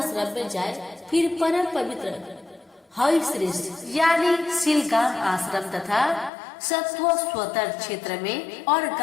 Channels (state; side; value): drops out; right; at 6.3 s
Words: में जाए। फिर परम पवित्र हरि श्रेष्ठ यानी शिलगाम आश्रम तथा सत्व स्वतर क्षेत्र में और